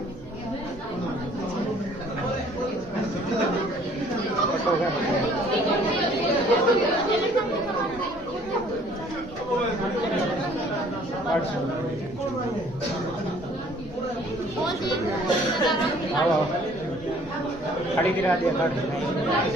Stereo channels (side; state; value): right; noise; rumble, 19 dB below the sound